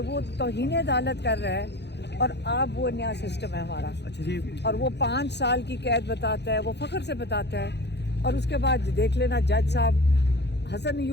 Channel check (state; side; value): late; right; 0.50 ms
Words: वो तौहीन अदालत कर रहा है, और आप वो नया सिस्टम है हमारा। अच्छा जी, और वो 5 साल की कैद बताता है, वो फ़ख्र से बताता है, और उसके बाद देख लेना जज साहब हसन